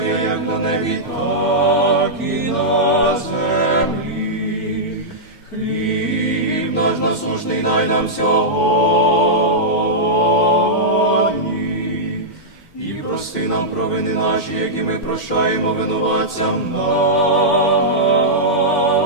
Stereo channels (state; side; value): late; right; 2.1 ms